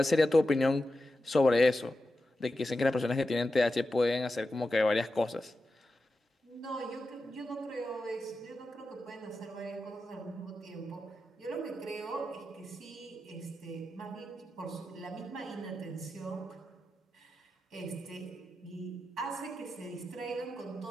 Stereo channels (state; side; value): normal; both; correlation 0.91